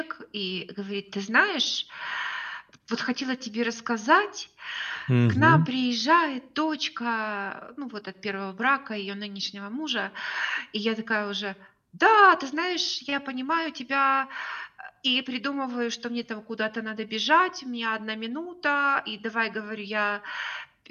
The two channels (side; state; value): both; identical; correlation 1.00